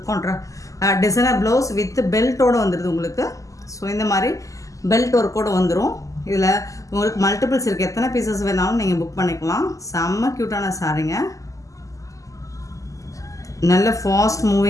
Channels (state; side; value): late; right; 0.16 ms